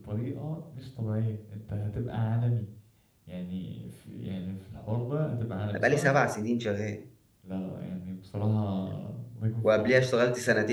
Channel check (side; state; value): both; identical; correlation 1.00